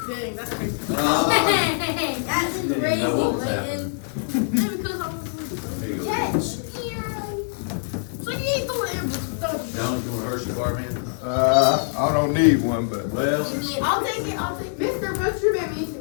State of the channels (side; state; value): right; silent; digital silence